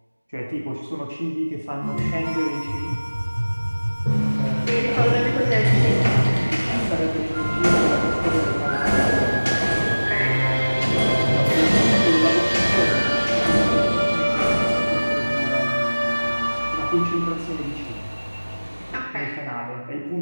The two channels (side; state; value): both; inverted; correlation -1.00